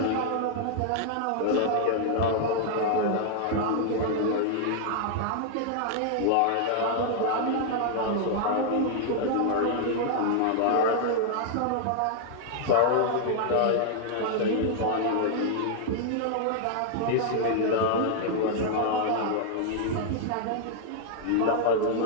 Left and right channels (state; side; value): different; both; correlation -0.01